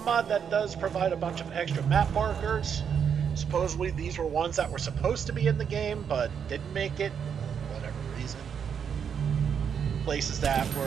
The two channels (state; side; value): quieter; left; 7.4 dB